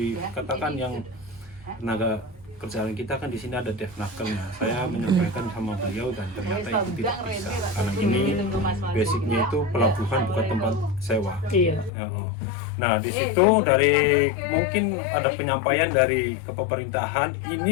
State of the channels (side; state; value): right; drops out; at 11.9 s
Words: yang tenaga kerjaan kita kan di sini ada devnakelnya. Saya menyampaikan sama beliau, dan ternyata itu tidak bisa, karena ini basicnya itu pelabuhan bukan tempat sewa. Iya. Nah di situ dari mungkin ada penyampaian dari kepemerintahan,